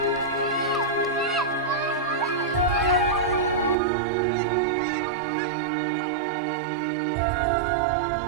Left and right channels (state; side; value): drops out; left; at 3.8 s